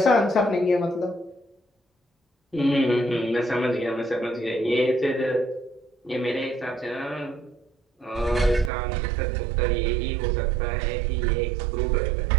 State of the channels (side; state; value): left; drops out; at 8.7 s